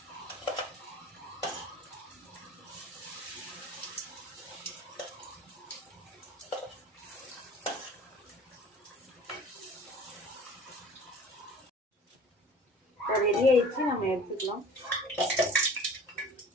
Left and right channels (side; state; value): both; normal; correlation 0.44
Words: ரெடி ஆயிடுச்சு, நம்ம எடுத்துக்கலாம்.